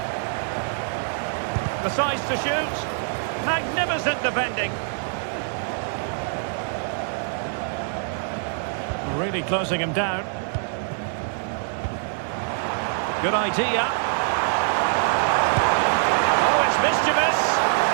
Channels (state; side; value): silent; left; digital silence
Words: The size to shoot. Magnificent defending. Really closing him down. Good idea. Oh, it's mischievous.